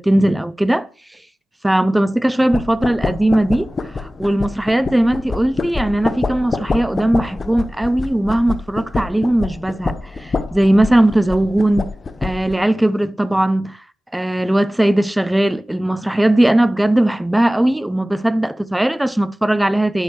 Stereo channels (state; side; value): normal; both; correlation 0.98